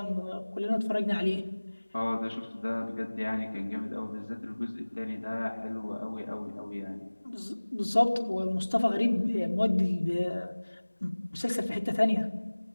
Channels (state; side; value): inverted; both; correlation -1.00